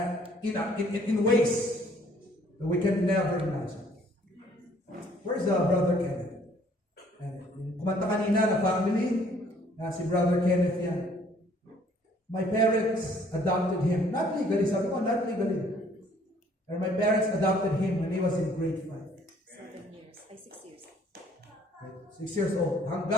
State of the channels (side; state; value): both; normal; correlation 0.60